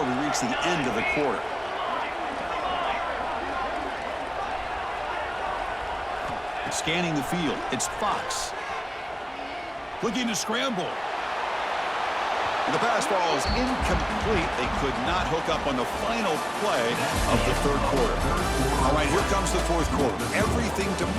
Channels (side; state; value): both; identical; correlation 1.00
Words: reach the end of the quarter. Scanning the field. It's Fox. Looking to scramble. And the pass ball is incomplete. They could not hook up on the final play of the third quarter. All right, here comes the fourth quarter. Everything to